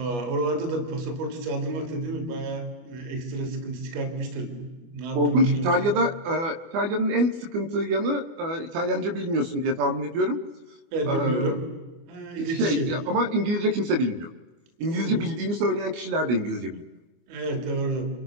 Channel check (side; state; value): left; late; 24 ms